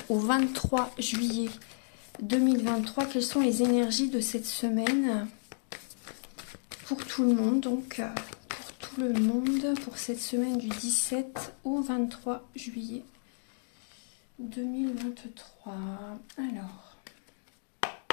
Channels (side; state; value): right; silent; digital silence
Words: au 23 juillet 2023, quelles sont les énergies de cette semaine pour tout le monde, donc pour tout le monde, pour cette semaine du 17 au 23 juillet 2023. Alors,